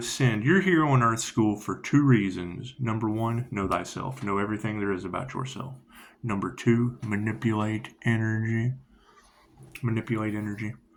You're here on Earth School for 2 reasons. Number 1, know thyself. Know everything there is about yourself. Number 2, manipulate energy. Manipulate energy.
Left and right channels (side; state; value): both; identical; correlation 1.00